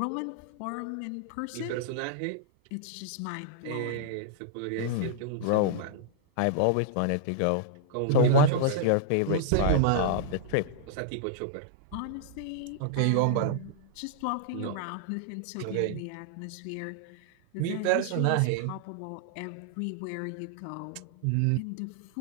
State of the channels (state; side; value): different; both; correlation -0.01